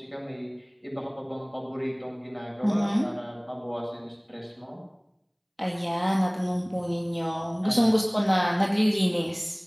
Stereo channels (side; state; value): both; identical; correlation 1.00